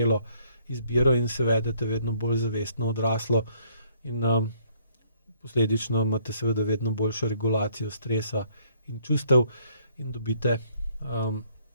izbiro in se vedete vedno bolj zavestno odraslo, in posledično imate seveda vedno boljšo regulacijo stresa in čustev in dobite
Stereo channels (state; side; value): inverted; both; correlation -0.64